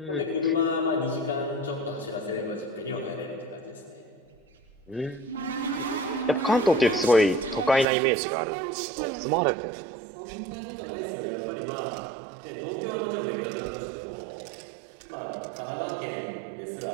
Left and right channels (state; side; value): drops out; left; at 7.9 s